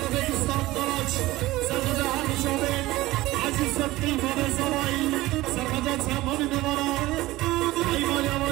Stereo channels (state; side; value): quieter; left; 18.1 dB